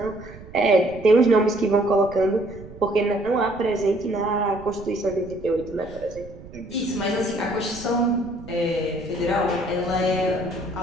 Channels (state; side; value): noise; right; rumble, 17 dB below the sound